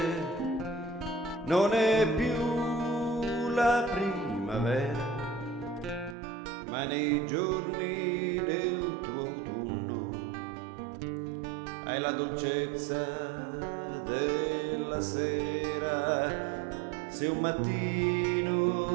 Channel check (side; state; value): left; drops out; at 6.2 s